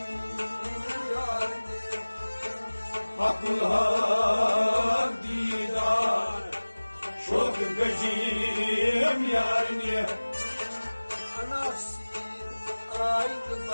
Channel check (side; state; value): both; inverted; correlation -1.00